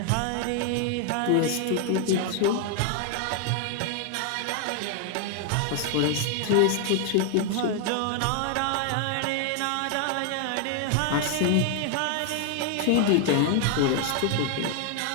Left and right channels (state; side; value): different; both; correlation 0.00